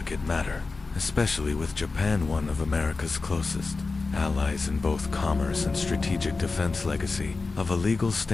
matter, especially with Japan, one of America's closest allies in both commerce and strategic defense. Legacy of a legal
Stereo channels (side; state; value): right; quieter; 3.9 dB